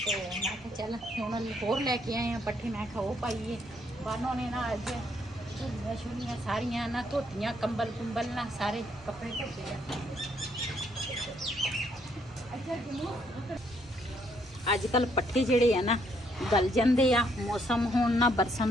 ਮੈਂ ਕਿਹਾ ਚੱਲ ਹੁਣ ਹੋਰ ਲੈ ਕੇ ਆਏ ਆ ਪੱਠੇ, ਮੈਂ ਕਿਹਾ ਉਹ ਪਾਈਏ। ਬਾਨੋ ਨੇ ਨਾ ਅੱਜ ਝੁੱਲੀਆਂ ਛੁੱਲੀਆਂ ਸਾਰੀਆਂ ਨਾ ਧੋਤੀਆਂ, ਕੰਬਲ ਕੁੰਬਲ ਨਾ ਸਾਰੇ ਕੱਪੜੇ ਧੋਤੇ ਆ। ਅੱਜ ਕੱਲ ਪੱਠੇ ਜਿਹੜੇ ਆ ਨਾ ਗਲ ਜਾਂਦੇ ਆ, ਮੌਸਮ ਹੁਣ ਨਾ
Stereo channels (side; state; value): both; normal; correlation 0.71